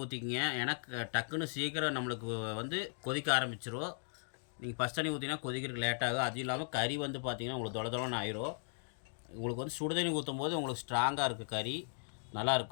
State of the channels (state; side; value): silent; right; digital silence